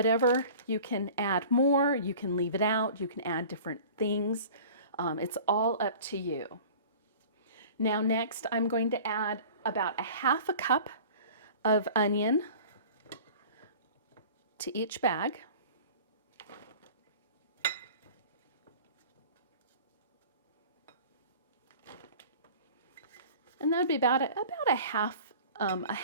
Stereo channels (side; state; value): both; inverted; correlation -0.43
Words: you can add more, you can leave it out, you can add different things. It's all up to you. Now next, I'm going to add about a 1/2 cup of onion to each bag. And that would be about a